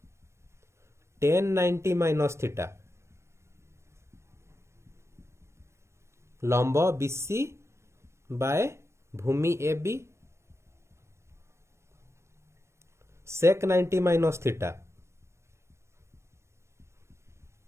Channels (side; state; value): left; late; 0.13 ms